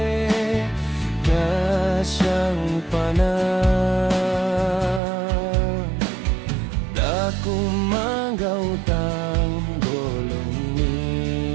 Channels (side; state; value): left; drops out; at 5.0 s